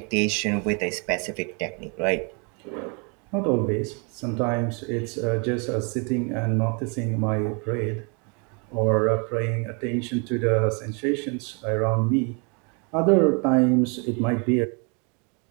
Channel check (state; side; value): quieter; left; 34.6 dB